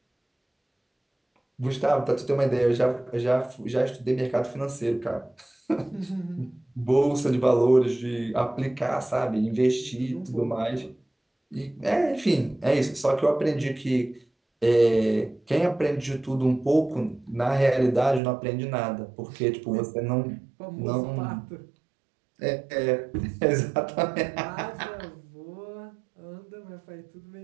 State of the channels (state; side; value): drops out; left; at 18.2 s